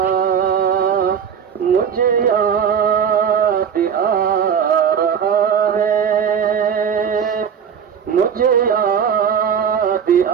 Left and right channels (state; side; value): quieter; left; 7.5 dB